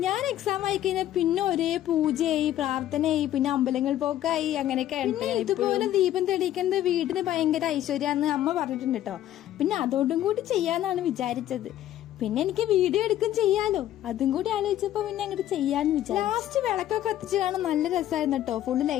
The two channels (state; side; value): quieter; right; 12.6 dB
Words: ഞാൻ എക്സാം ആയി കഴിഞ്ഞാൽ പിന്നെ ഒരേ പൂജയായി, പ്രാർത്ഥനയായി, പിന്നെ അമ്പലങ്ങൾ പോക്കായി, അങ്ങനെയൊക്കെ. ഇതുപോലെ ദീപം തെളിയിക്കുന്നത് വീടിന് ഭയങ്കര ഐശ്വര്യാന്ന് അമ്മ പറഞ്ഞിട്ടുണ്ട് കേട്ടോ. പിന്നെ അതോടും കൂടി ചെയ്യാന്നാണ് വിചാരിച്ചത്. പിന്നെ എനിക്ക് വീഡിയോ എടുക്കും ചെയ്യാലോ, അതും കൂടി ആലോചിച്ചപ്പോ പിന്നെ അങ്ങോട്ട് ചെയ്യാന്ന് വിചാരിച്ചു. ലാസ്റ്റ് വിളക്കൊക്കെ കത്തിച്ചതാണ്, നല്ല രസമായിരുന്നു കേട്ടോ. ഫുള്ള്